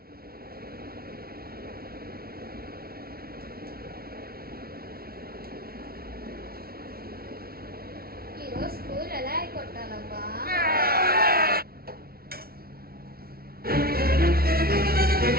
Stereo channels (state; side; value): late; left; 0.44 ms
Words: ఈరోజు స్కూల్ ఎలా కొట్టాలబ్బా?